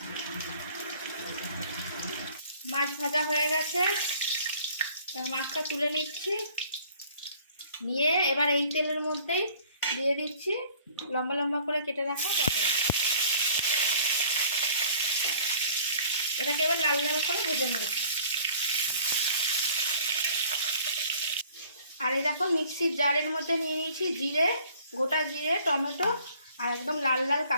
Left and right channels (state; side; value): inverted; both; correlation -0.53